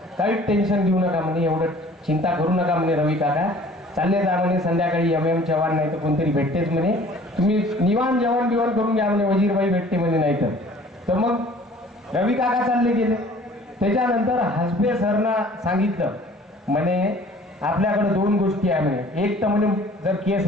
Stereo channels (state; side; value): normal; both; correlation 0.51